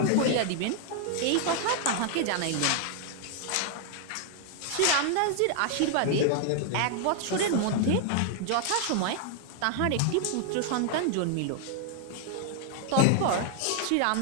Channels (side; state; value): both; different; correlation 0.00